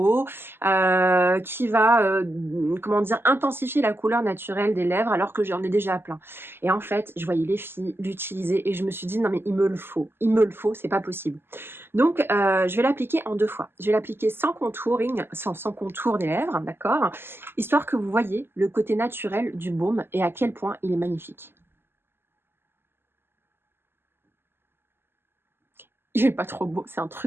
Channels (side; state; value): left; late; 0.11 ms